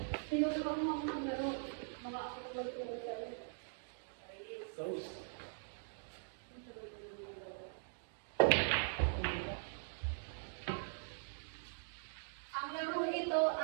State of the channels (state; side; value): silent; left; digital silence